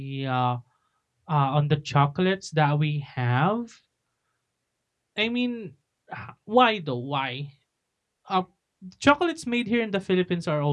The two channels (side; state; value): both; identical; correlation 1.00